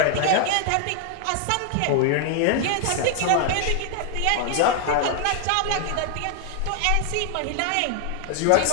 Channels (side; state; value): both; different; correlation 0.00